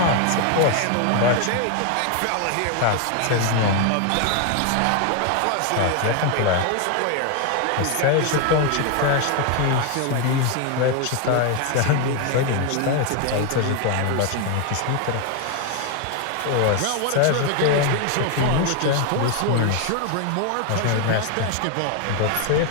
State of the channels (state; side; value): different; both; correlation 0.01